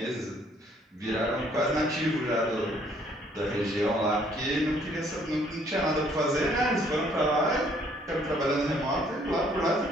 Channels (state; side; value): normal; both; correlation 0.63